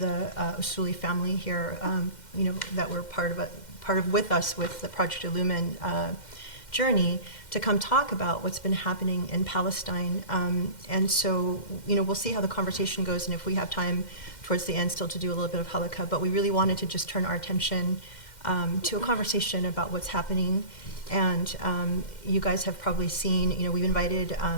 Usuli family here, that were part of with us with the Project Illumin journey, to come talk about what's been happening in Palestine. And so, we'll see how the conversation goes, and if we have time towards the end still to do a little bit of halakha, but we really wanted to just turn our attention to a conversation about what's happening. And you guys have probably seen, we've invited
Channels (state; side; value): late; right; 2.1 ms